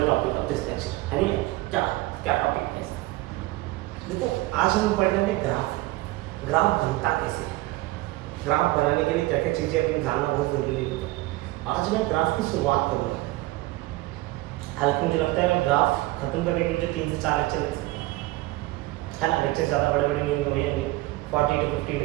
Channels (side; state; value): left; quieter; 19.5 dB